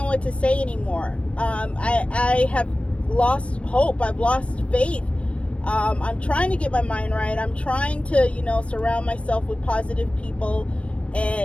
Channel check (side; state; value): right; late; 0.061 ms